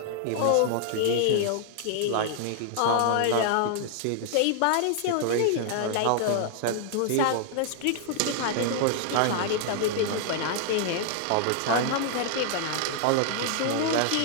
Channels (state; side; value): different; both; correlation -0.01